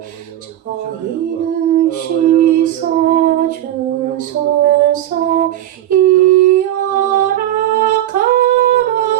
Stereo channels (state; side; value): quieter; left; 12.6 dB